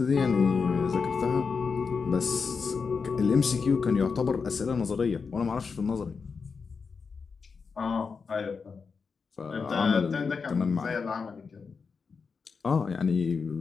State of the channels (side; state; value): right; quieter; 5.2 dB